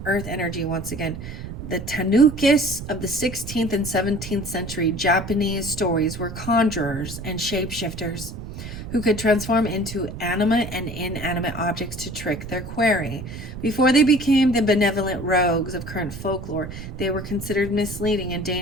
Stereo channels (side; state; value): right; noise; rumble, 10 dB below the sound